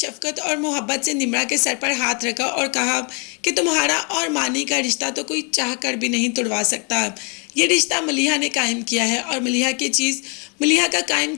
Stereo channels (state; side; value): quieter; right; 35.4 dB